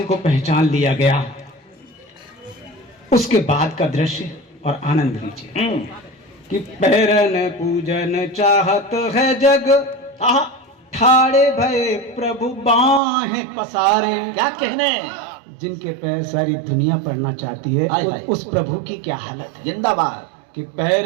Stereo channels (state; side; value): drops out; left; at 13.0 s